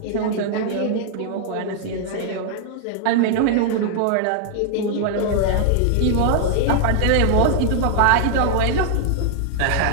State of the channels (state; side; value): different; both; correlation 0.00